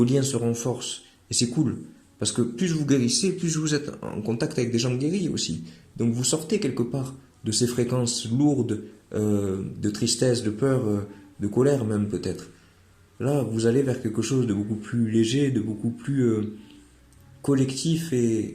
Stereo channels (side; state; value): both; identical; correlation 1.00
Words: liens se renforcent. Et c'est cool. Parce que plus vous guérissez, plus vous êtes en contact avec des gens guéris aussi. Donc vous sortez quelque part de ces fréquences lourdes de tristesse, de peur, de colère même peut-être. Là, vous allez vers quelque chose de beaucoup plus léger, de beaucoup plus collectif